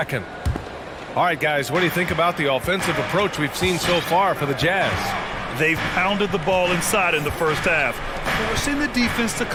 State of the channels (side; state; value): both; identical; correlation 1.00